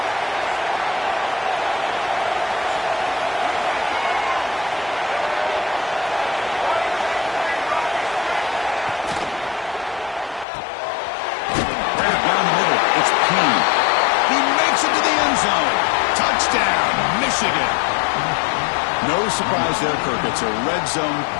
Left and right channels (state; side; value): drops out; right; at 10.5 s